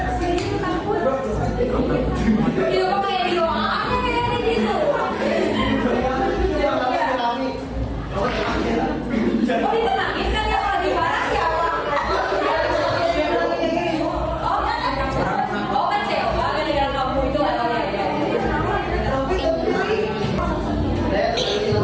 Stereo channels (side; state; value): both; identical; correlation 1.00